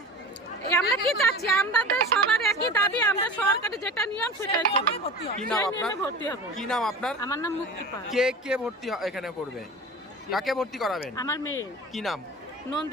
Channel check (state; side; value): normal; both; correlation 0.34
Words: আমরা কি চাচ্ছি? আমাদের সবার একই দাবি, আমরা সরকারি যেটা নিয়ম সেটাই করব। কি নাম আপনার? ভর্তি হবে। কি নাম আপনার? আমার নাম মুক্তি পাল। কে ভর্তি এখানে করবে? কাকে ভর্তি করাবেন? আমার মেয়ে। কি নাম?